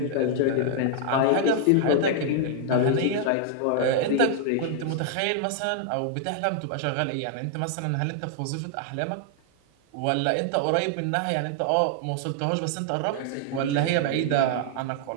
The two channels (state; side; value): different; both; correlation -0.01